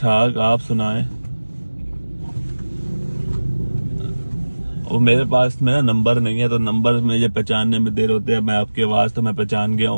आप सुनाएं। और मेरे पास मेरा नंबर नहीं है, तो नंबर मुझे पहचानने में देर होती है। मैं आपकी आवाज तो मैं पहचान गया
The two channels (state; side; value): inverted; both; correlation -1.00